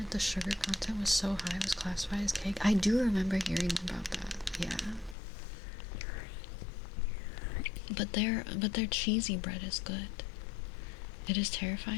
The sugar content was so high it was classified as cake. I do remember hearing about that. Yeah. But their cheesy bread is good. It is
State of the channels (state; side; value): drops out; right; at 5.2 s